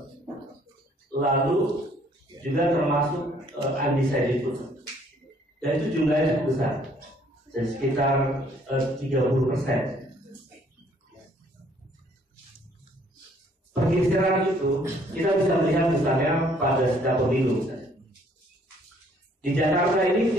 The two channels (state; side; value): normal; both; correlation 0.62